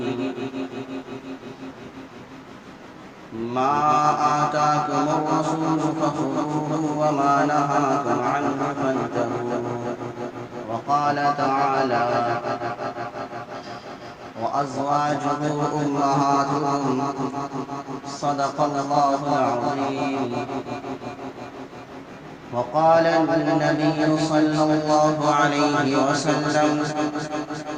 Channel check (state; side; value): identical; both; correlation 1.00